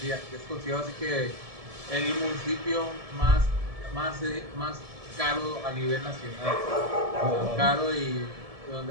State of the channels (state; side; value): late; left; 1.7 ms